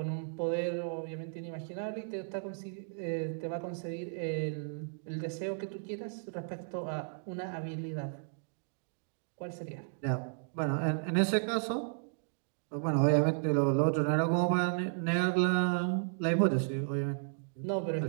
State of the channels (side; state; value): left; silent; digital silence